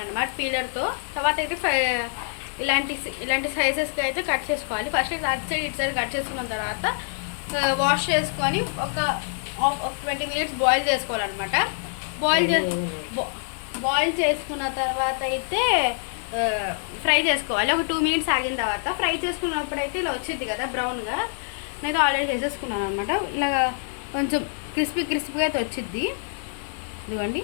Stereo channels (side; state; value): right; silent; digital silence